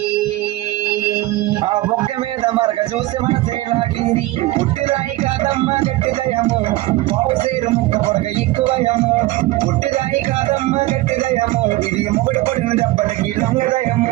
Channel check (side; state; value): left; quieter; 18.4 dB